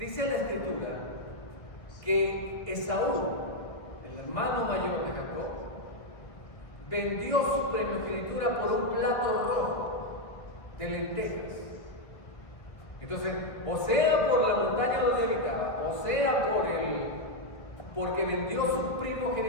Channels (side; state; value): right; late; 1.3 ms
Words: la Escritura que Esaú, el hermano mayor de Jacob, vendió su primogenitura por un plato rojo de lentejas. Entonces, o sea por la montaña donde habitaba, o sea porque vendió su